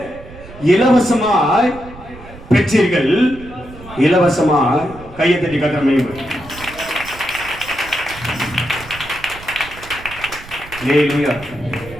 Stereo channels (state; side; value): noise; right; rumble, 17 dB below the sound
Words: இலவசமாய் பெற்றீர்கள், இலவசமாய் கையை தட்டி கட்டுற மையம். அல்லேலூயா,